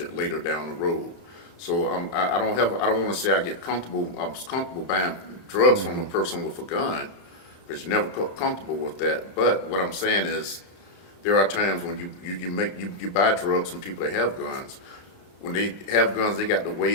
later down the road. So I don't want to say I get comfortable. I was comfortable buying drugs from a person with a gun, because you're never comfortable with that. But what I'm saying is, there are times when you buy drugs from people that have guns. When they have guns, they got to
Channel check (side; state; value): right; late; 35 ms